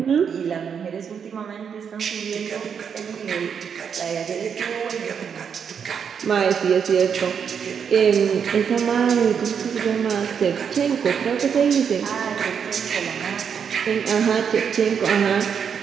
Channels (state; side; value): quieter; left; 7.1 dB